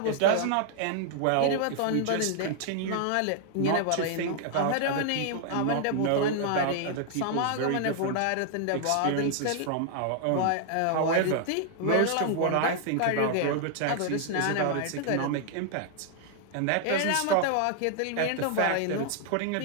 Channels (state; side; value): different; both; correlation 0.00